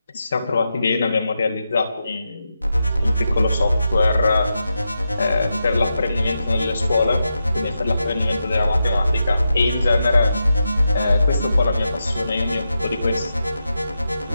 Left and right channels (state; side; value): inverted; both; correlation -0.88